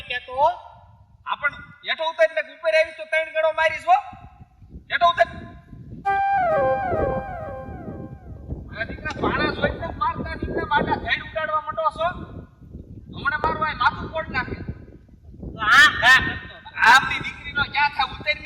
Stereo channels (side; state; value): both; identical; correlation 1.00